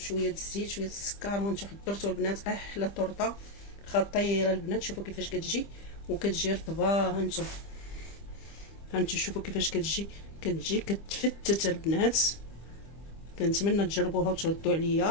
الزيت شويه السكر وانتم حضرتوا البنات احلى طرطه خطيره البنات. شوفوا كيفاش كتجي، وكتجي رطبه. هانتو شوفوا كيفاش كتجي كتفتت البنات. كنتمنى تجربوها وتردوا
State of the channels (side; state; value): right; late; 25 ms